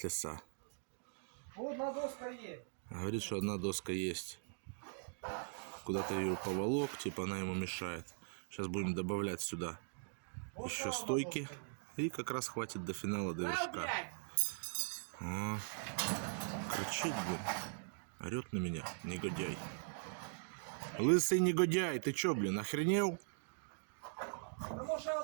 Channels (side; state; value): left; silent; digital silence